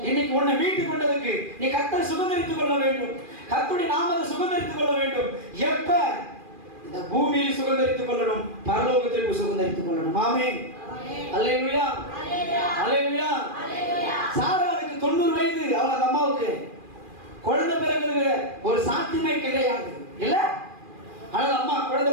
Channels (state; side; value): late; left; 2.4 ms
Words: இன்னைக்கு உன்னை மீட்டுக் கொண்டதுக்கு நீ கர்த்தரை சுகந்தரித்துக் கொள்ள வேண்டும். கர்த்தருடைய நாமத்தை சுகந்தரித்துக் கொள்ள வேண்டும். எப்ப? இந்த பூமியில் சுகந்தரித்துக் கொள்ளணும், பரலோகத்திற்கு சுகந்தரித்துக் கொள்ளணும். ஆமென். அல்லேலூயா, அல்லேலூயா. சாராளுக்கு 90 வயது. அவங்க அம்மாவுக்கு குழந்தை பிறகு ஒரு சாத்தியமே கிடையாது இல்ல. ஆனால் அம்மா குழந்தை